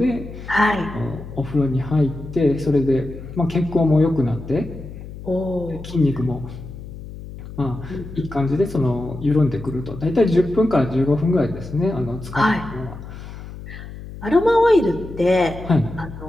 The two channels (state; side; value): noise; left; hum, 13 dB below the sound